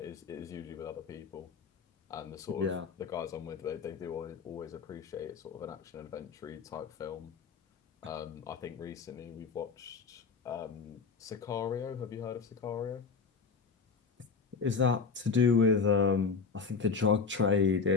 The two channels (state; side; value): quieter; right; 5.2 dB